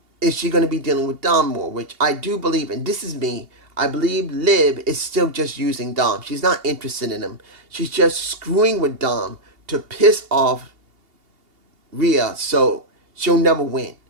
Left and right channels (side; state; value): left; late; 2.8 ms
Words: is she going to be dealing with Dom more? Which I do believe, and this is me, I believe Liv is still just using Dom. She's not interested in him. She's just screwing with Dom to piss off Rhea so she'll never win.